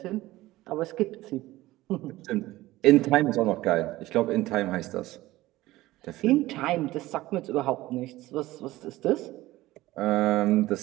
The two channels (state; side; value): quieter; left; 17.4 dB